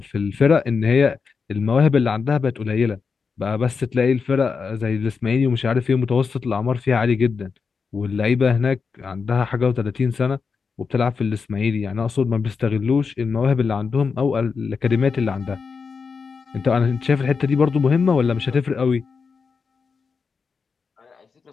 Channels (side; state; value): right; quieter; 5.3 dB